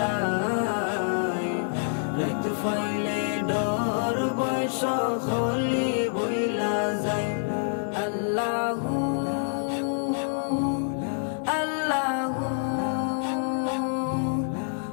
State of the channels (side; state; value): right; silent; digital silence